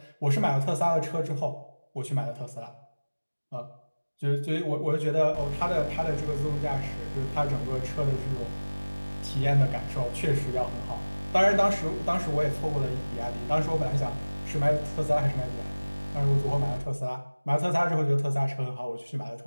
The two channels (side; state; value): both; inverted; correlation -1.00